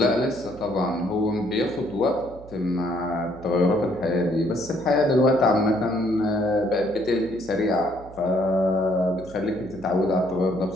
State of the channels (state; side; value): noise; right; hum, 18 dB below the sound